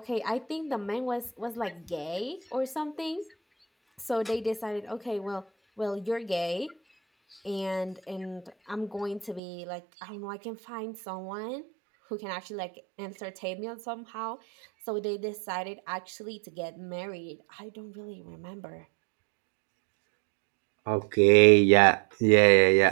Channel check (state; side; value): drops out; left; at 9.4 s